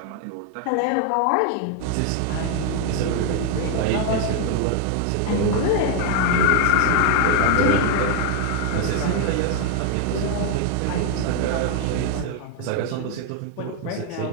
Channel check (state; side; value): different; both; correlation 0.01